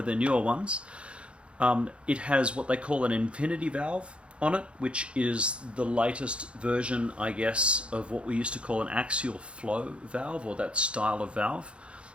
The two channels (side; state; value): left; late; 0.058 ms